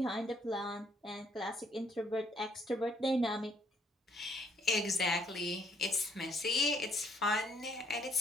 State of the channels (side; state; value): both; normal; correlation 0.66